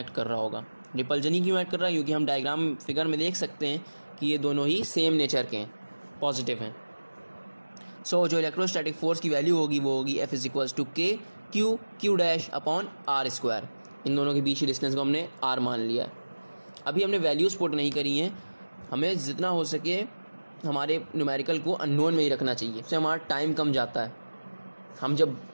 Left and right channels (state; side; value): inverted; both; correlation -1.00